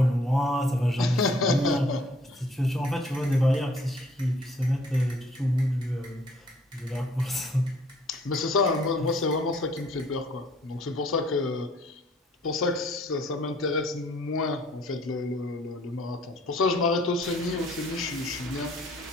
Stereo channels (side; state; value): both; normal; correlation 0.59